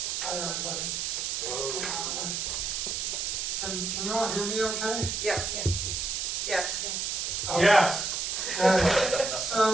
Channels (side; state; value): right; noise; hiss, 1 dB below the sound